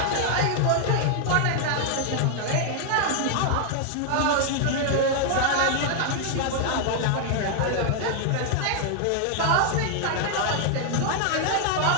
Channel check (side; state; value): both; different; correlation 0.00